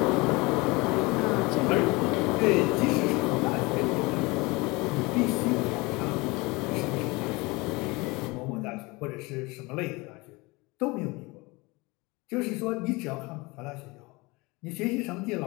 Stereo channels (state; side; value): quieter; right; 24.5 dB